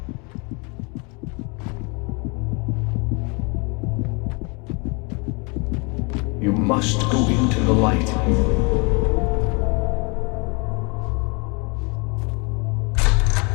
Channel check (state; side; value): quieter; right; 31.4 dB